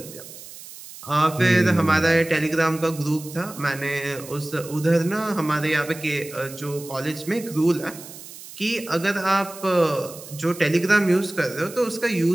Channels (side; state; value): right; noise; hiss, 15 dB below the sound